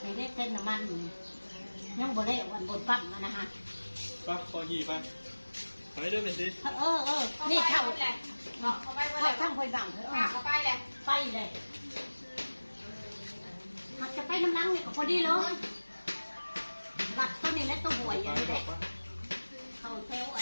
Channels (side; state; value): both; inverted; correlation -1.00